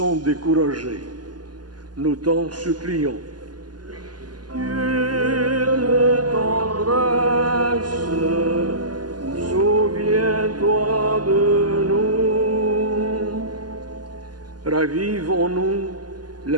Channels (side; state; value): left; late; 0.70 ms